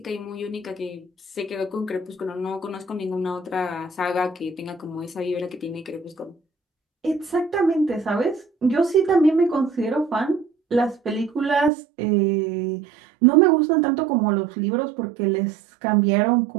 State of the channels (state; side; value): drops out; left; at 11.7 s